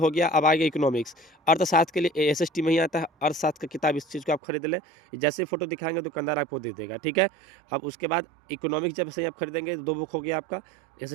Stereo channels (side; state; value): left; drops out; at 4.4 s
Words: गया। अब आगे इकोनॉमिक्स, अर्थशास्त्र के लिए एसएसटी में ही आता है, अर्थशास्त्र की किताब, इस चीज़ को आप खरीद लें। जैसे फोटो दिखाएंगे दुकानदार आपको दे देगा, ठीक है। अब उसके बाद इकोनॉमिक्स जब से आप खरीदेंगे तो 2 बुक हो गया आपका।